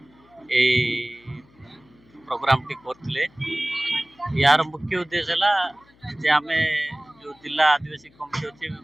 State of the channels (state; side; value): noise; left; hum, 30 dB below the sound